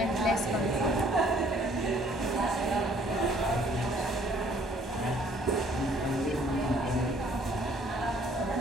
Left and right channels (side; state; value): both; normal; correlation 0.60